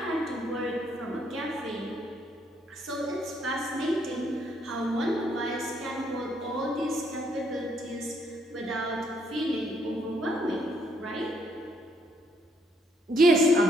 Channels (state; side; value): normal; both; correlation 0.70